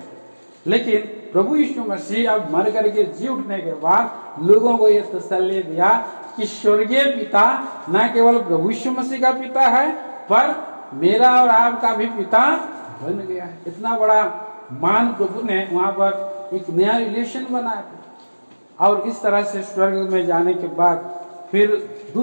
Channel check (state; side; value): inverted; both; correlation -1.00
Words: लेकिन प्रभु यीशु मसीह अब मर करके जी उठने के बाद लोगों को यह तसल्ली दिया कि स्वर्गीय पिता न केवल प्रभु यीशु मसीह का पिता है, पर मेरा और आपका भी पिता बन गया है। इतना बड़ा मान प्रभु ने वहां पर एक नया रिलेशन बनाया। और इस तरह से स्वर्ग में जाने के बाद फिर